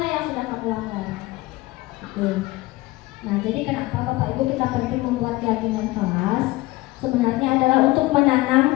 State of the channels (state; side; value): quieter; right; 19.7 dB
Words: yang sudah kamu langgar. Gitu. Nah, jadi kenapa Bapak Ibu kita penting membuat keyakinan kelas? Sebenarnya adalah untuk